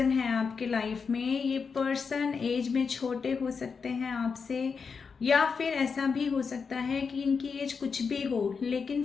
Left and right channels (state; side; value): quieter; right; 5.5 dB